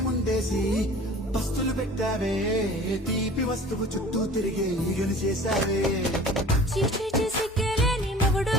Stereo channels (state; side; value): normal; both; correlation 0.44